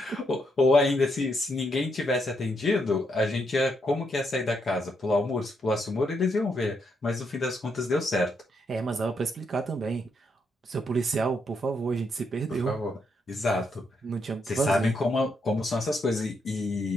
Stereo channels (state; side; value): normal; both; correlation 0.78